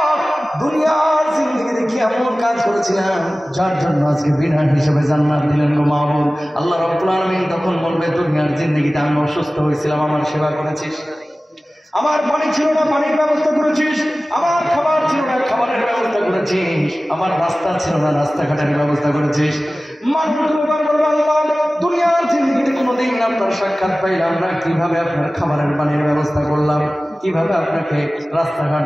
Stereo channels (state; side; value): normal; both; correlation 0.97